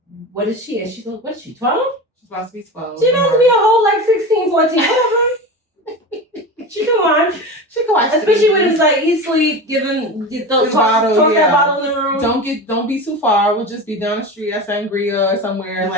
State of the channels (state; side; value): normal; both; correlation 0.27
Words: what is she? And she's like, what is she, 12? She's about to be 12. She's about to be a whole, like, 16, 14, whatever. She can watch. She can watch. Especially when it's like, eat, sleep, toss that bottle in the room. Don't be too far. We'll just be down the street at Sangria or somewhere,